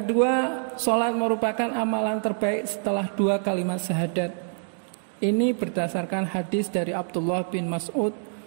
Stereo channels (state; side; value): silent; left; digital silence